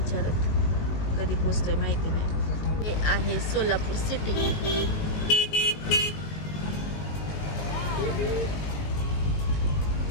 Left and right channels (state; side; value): late; right; 19 ms